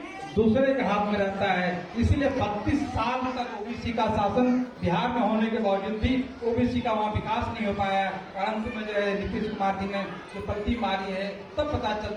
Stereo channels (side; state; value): both; identical; correlation 1.00